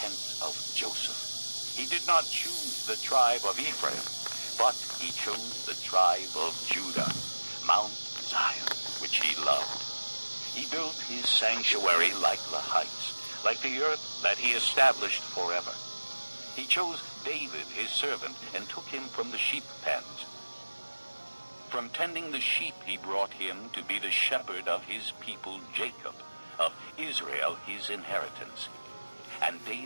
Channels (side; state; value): both; inverted; correlation -1.00